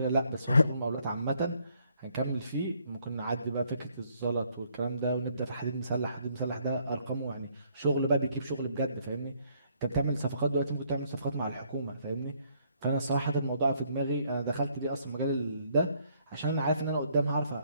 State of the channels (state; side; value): inverted; both; correlation -0.68